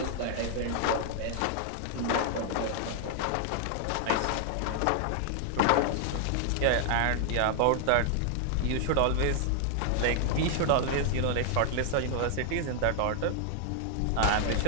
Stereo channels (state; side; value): different; both; correlation 0.00